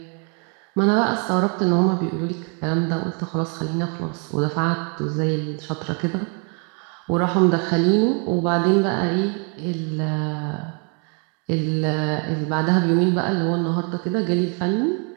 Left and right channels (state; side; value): quieter; left; 37.4 dB